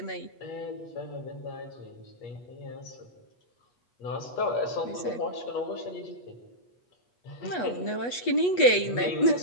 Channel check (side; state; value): right; late; 8.2 ms